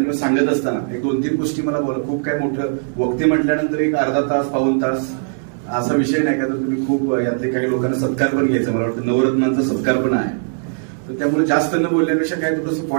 सांगत असताना एक 2-3 गोष्टी मला खूप काय मोठं वक्ते म्हटल्यानंतर एक अर्धा तास, पाऊण तास असा विषय नाही का, तर तुम्ही खूप यातले काही लोकांना सत्कार पण घ्यायचा, मला वाटतं नवरत्नांचा सत्कार पण आहे. तर त्यामुळे जास्त न बोलण्यापेक्षा काय थोडंसं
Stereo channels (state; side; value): silent; left; digital silence